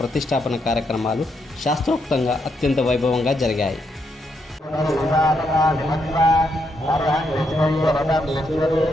ప్రతిష్టాపన కార్యక్రమాలు శాస్త్రోక్తంగా అత్యంత వైభవంగా జరిగాయి.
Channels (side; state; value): both; normal; correlation 0.79